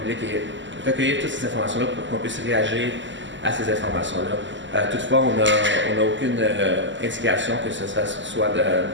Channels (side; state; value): left; late; 0.54 ms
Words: publique et recueillir toutes ces informations-là pour qu'on puisse réagir à ces informations-là. Toutefois, on n'a aucune indication que ce soit